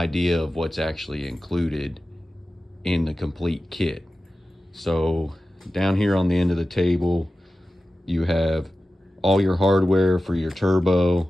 of what's actually included in the complete kit. So down here on the end of the table, you have all your hardware for your turbo,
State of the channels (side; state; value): both; normal; correlation 0.94